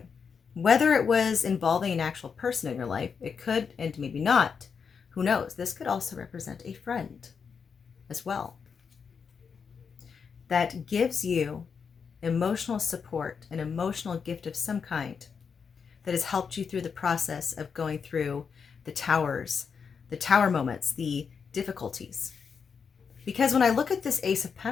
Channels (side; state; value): right; quieter; 6.1 dB